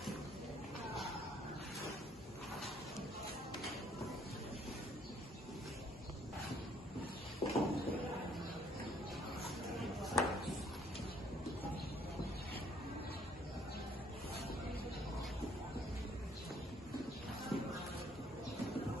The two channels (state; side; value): normal; both; correlation 0.63